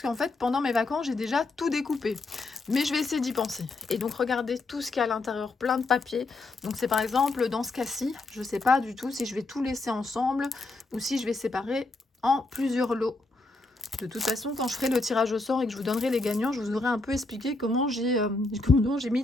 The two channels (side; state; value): right; quieter; 3.2 dB